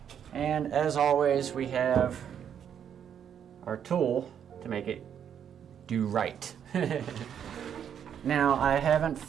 and as always, we have our tool to make it do right. Now, I haven't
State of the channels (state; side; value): quieter; left; 8.6 dB